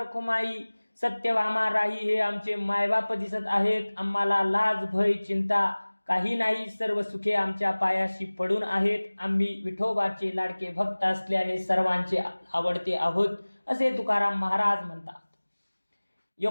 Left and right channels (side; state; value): both; inverted; correlation -1.00